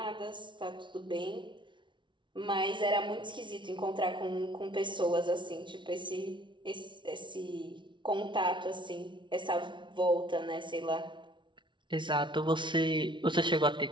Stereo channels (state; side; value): late; left; 0.24 ms